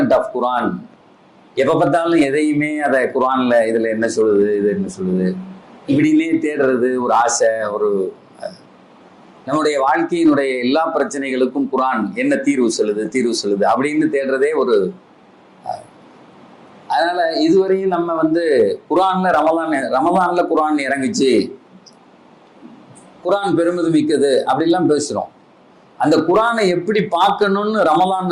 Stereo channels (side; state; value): both; identical; correlation 1.00